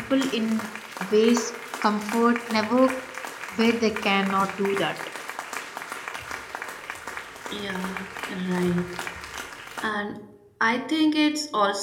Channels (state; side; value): identical; both; correlation 1.00